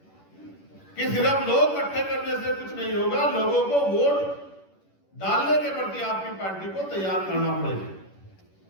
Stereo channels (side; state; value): right; late; 10 ms